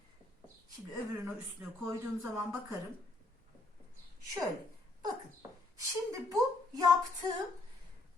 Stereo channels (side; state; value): right; quieter; 3.2 dB